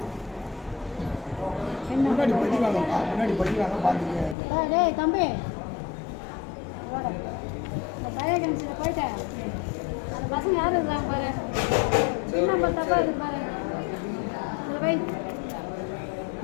டேய் தம்பி இந்த பையன் போயிட்டேன். அந்த பசங்க யார் இருக்கிறாங்க பாரு. பின் நம்பர் தப்பாக இருக்குது பாரு. இதில் வை.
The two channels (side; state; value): right; drops out; at 4.4 s